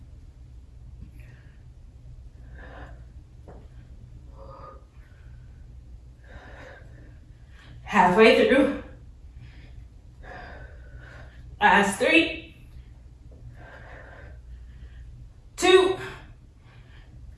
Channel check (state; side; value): identical; both; correlation 1.00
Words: Halfway through. Last 3, 2,